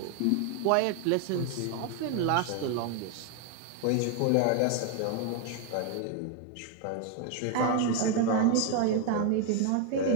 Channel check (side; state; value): both; different; correlation 0.01